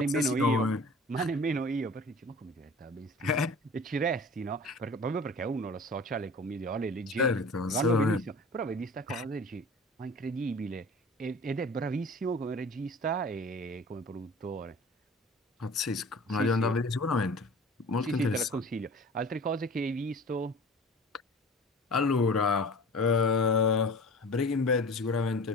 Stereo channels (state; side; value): normal; both; correlation 0.41